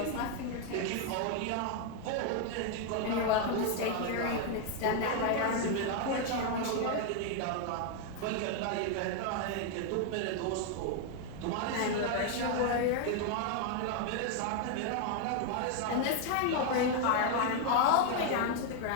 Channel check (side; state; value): both; different; correlation 0.00